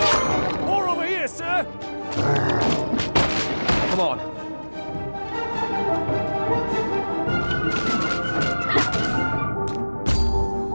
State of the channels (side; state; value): both; inverted; correlation -1.00